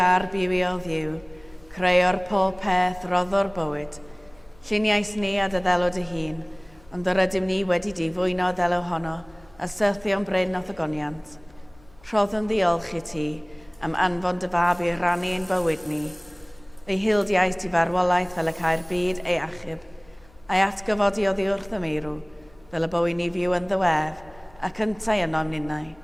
a'r bywio Dduw, creuo'r pob peth roddo'r bywyd. Lluniais ni a dy ddelod y hun, ond yr ydym ni wedi di fwyno ddelo honno, a syrthio'n bryn o ddogoniant. Rhoddwn ddiolch i ti am anfon dy fab i rannu ein bywyd ni. Ei hildiais di farwolaeth fel y cael byd ei achub, a'i atgyfodi oddi wrth y meirw, fel y bywyd ni fyw yn ddiwedd, ac yntau yno mninnau.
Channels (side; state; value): left; noise; hum, 27 dB below the sound